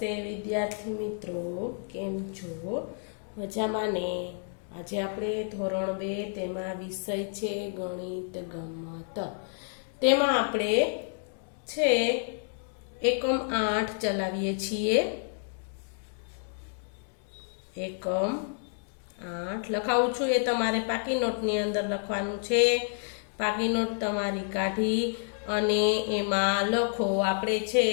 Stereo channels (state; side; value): silent; right; 58 dB below the other